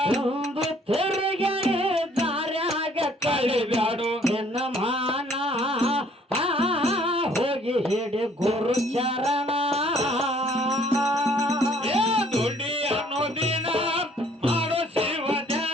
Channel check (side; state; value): both; normal; correlation 0.60